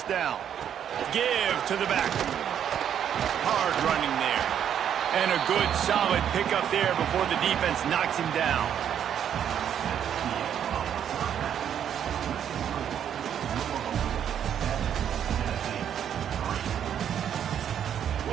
down. Give to the back. Hard running there. And a good, solid pickup there before the defense knocks him down.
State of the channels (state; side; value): quieter; left; 9.2 dB